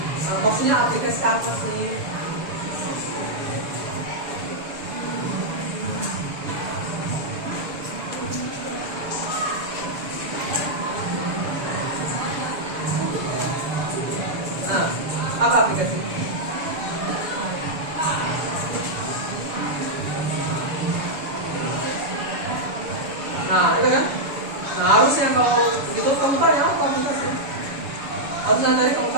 Maksudnya aplikasi apa sih? Nah, apa aplikasi? Nah, itu kan? Nah, harusnya kalau gitu kamu tanya apa aplikasi? Harusnya tadi kamu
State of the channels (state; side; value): late; left; 7.0 ms